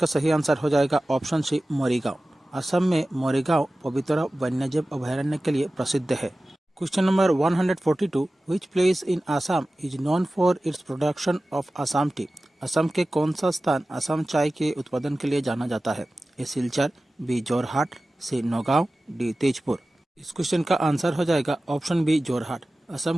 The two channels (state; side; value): normal; both; correlation 0.96